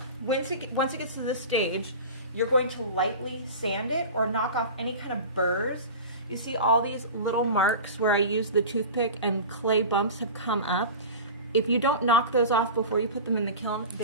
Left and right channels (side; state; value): both; inverted; correlation -0.33